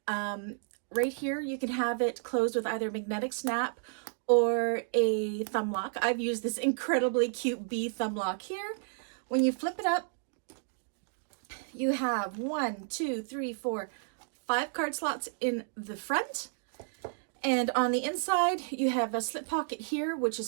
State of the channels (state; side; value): silent; left; digital silence